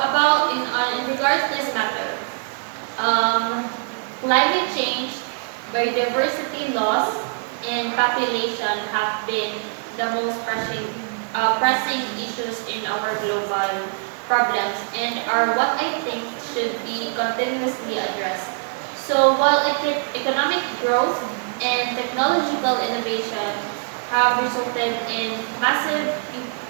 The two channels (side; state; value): left; silent; 59 dB below the other